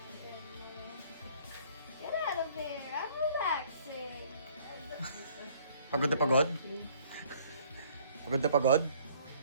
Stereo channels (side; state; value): both; inverted; correlation -0.58